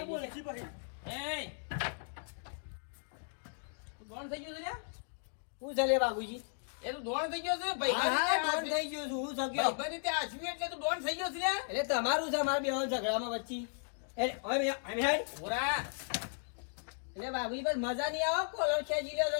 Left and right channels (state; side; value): silent; right; digital silence